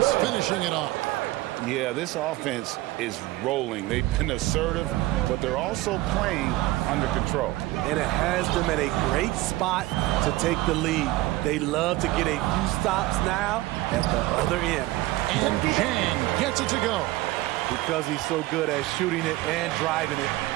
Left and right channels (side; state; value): left; quieter; 18.1 dB